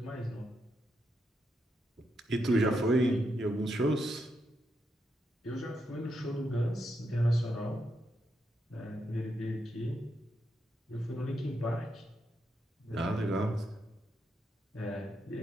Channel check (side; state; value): both; normal; correlation 0.82